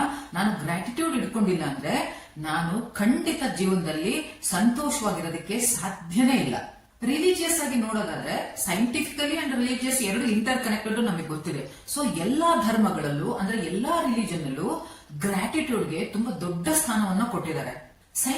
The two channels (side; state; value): both; identical; correlation 1.00